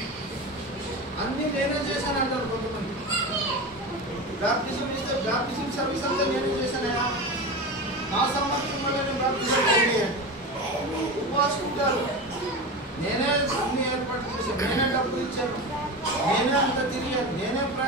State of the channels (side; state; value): both; normal; correlation 0.25